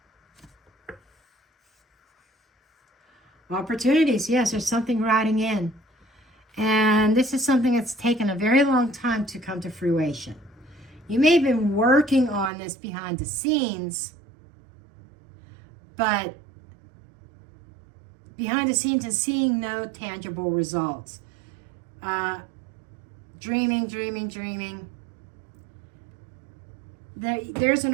Opportunities, yes, there's something riding in. And this is something that's taken a very long time to come to fruition. You may have been working on this behind the scenes, but behind the scenes and seeing no tangible results. Dreaming. There's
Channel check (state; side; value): drops out; left; at 12.5 s